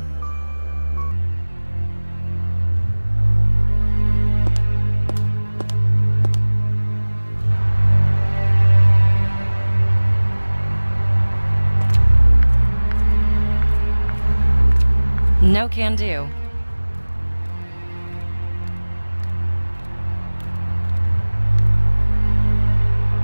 No can do.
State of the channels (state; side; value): inverted; both; correlation -1.00